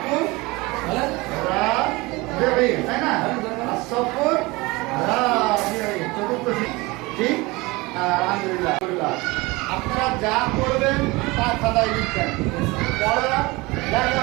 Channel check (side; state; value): left; quieter; 23.2 dB